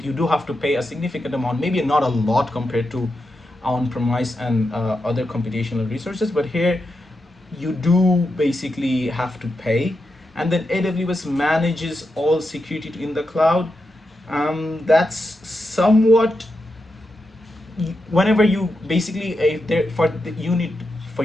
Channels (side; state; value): both; normal; correlation 0.87